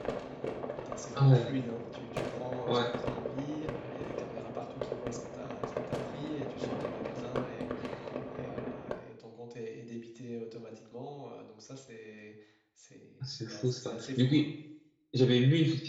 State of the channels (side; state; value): both; identical; correlation 1.00